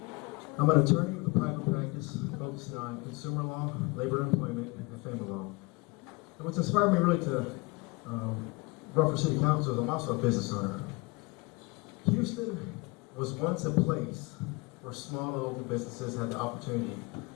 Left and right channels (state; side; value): quieter; right; 26.2 dB